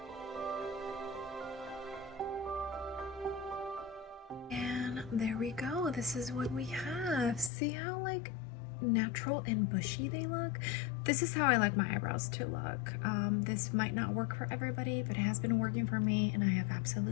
And there we go. This is what we have. See how like natural and bushy they look? This is how I like my eyebrows to look. This might not work for everybody, but it has been working for me and I have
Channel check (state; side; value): drops out; right; at 7.5 s